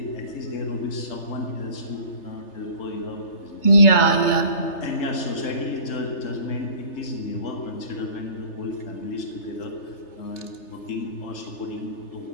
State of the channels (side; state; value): right; late; 3.3 ms